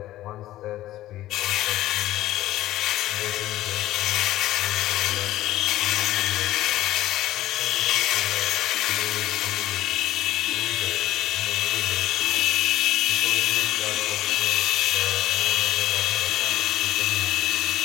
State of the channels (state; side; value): quieter; right; 14.8 dB